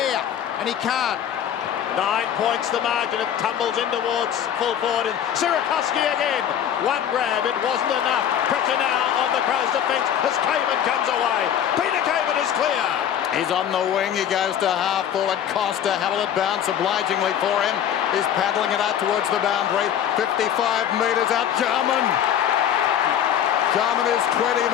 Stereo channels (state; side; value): quieter; right; 9.7 dB